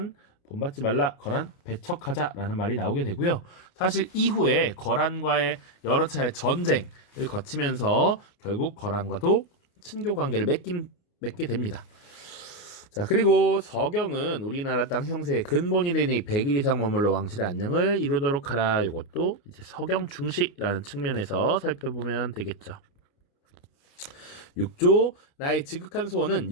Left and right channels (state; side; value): late; right; 29 ms